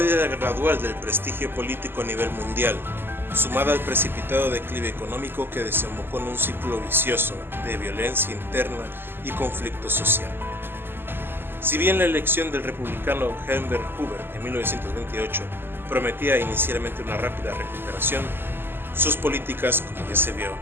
gradual del prestigio político a nivel mundial, sumada al precipitado declive económico que desembocó en un ciclo vicioso de violencia interna y conflicto social. Si bien la elección del republicano Herbert Hoover en 1928 prometía inicialmente una rápida recuperación, sus políticas, como ya se vio,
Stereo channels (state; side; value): late; left; 0.10 ms